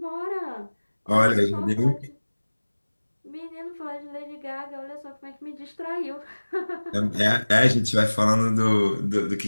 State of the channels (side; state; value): both; inverted; correlation -1.00